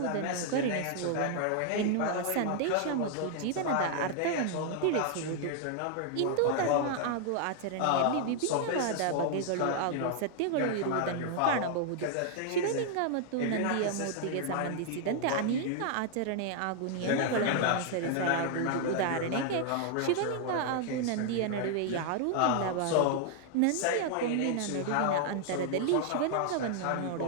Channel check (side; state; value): both; different; correlation 0.00